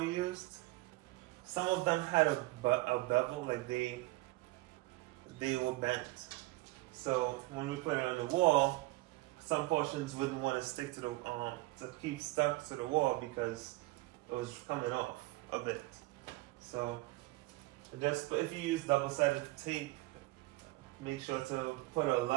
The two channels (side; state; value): left; quieter; 20.9 dB